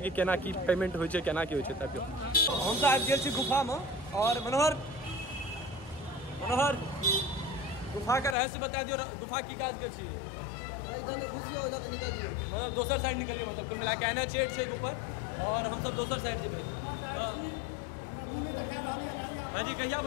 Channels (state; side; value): drops out; right; at 8.3 s